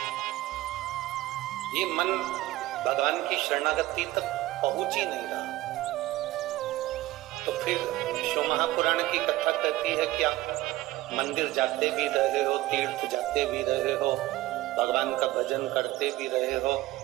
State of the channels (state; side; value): quieter; left; 17.1 dB